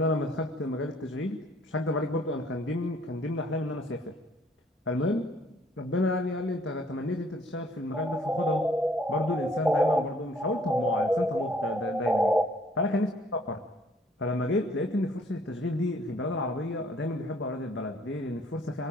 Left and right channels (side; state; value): both; normal; correlation 0.61